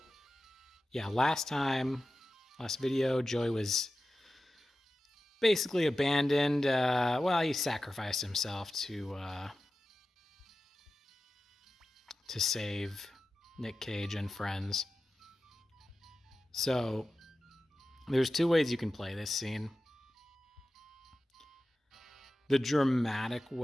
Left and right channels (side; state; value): both; normal; correlation 0.94